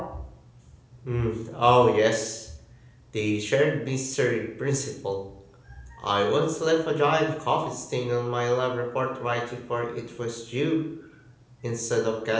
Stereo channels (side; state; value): both; identical; correlation 1.00